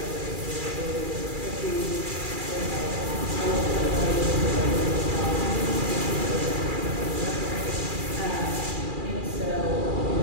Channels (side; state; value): left; late; 2.4 ms